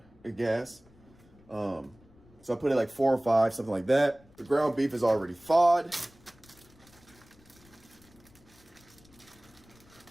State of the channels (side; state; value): left; noise; rumble, 27 dB below the sound